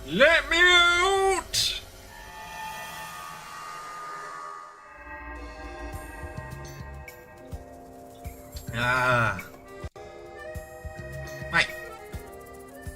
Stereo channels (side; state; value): both; identical; correlation 1.00